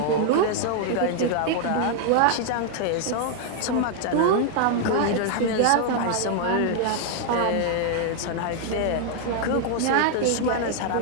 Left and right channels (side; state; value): both; different; correlation 0.00